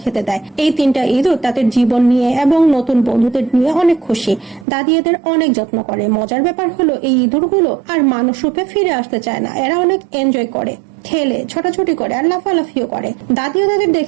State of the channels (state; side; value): drops out; left; at 4.7 s